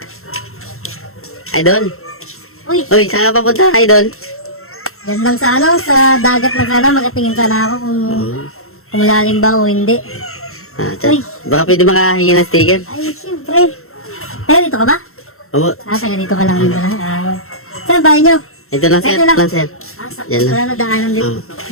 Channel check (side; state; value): right; late; 0.62 ms